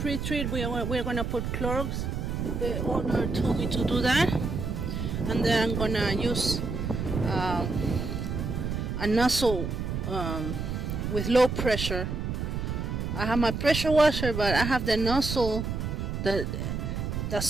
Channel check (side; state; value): right; noise; rumble, 3 dB below the sound